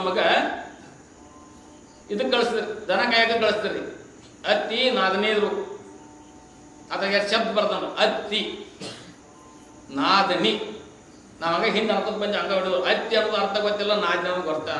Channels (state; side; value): identical; both; correlation 1.00